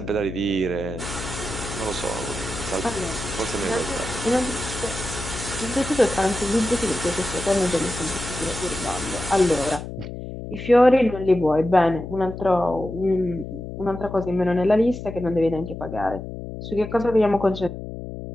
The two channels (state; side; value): noise; left; hum, 9 dB below the sound